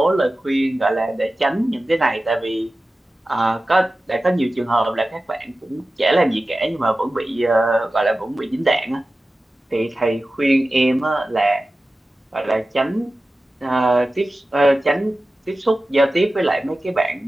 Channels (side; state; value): both; normal; correlation 0.95